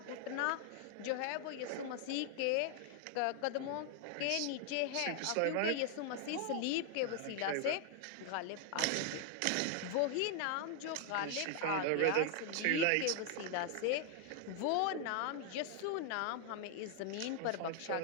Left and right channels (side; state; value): both; different; correlation 0.00